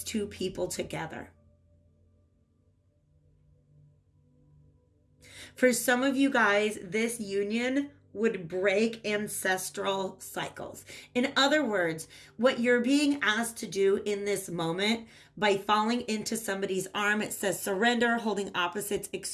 two people together. For some of you guys, this union would break ancestral cycles. In other words, what you're being asked to do in this moment by falling into somebody's arm, it says surrender, holding opposites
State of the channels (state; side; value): identical; both; correlation 1.00